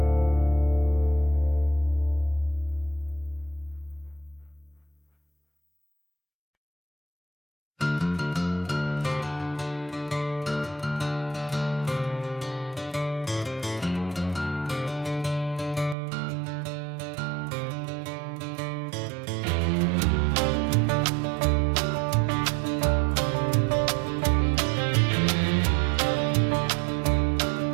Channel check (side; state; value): left; drops out; at 16.0 s